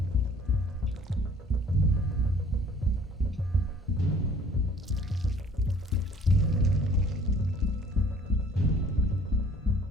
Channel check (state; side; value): normal; both; correlation 0.54